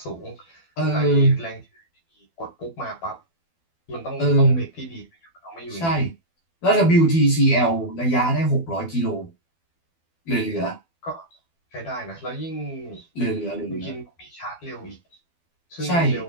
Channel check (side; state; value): right; late; 12 ms